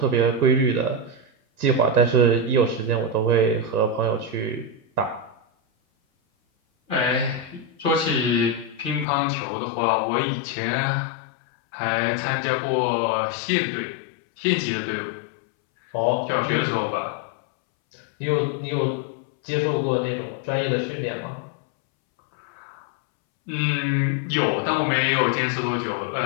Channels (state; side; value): drops out; right; at 9.1 s